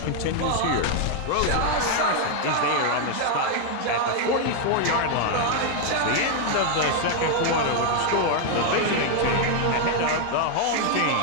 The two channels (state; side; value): different; both; correlation 0.00